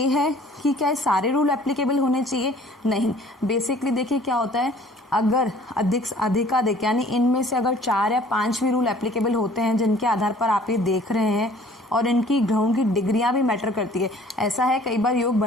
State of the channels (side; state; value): both; normal; correlation 0.53